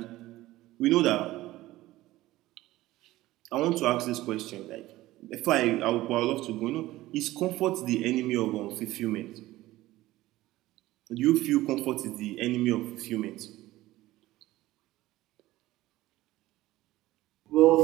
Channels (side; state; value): left; quieter; 16.9 dB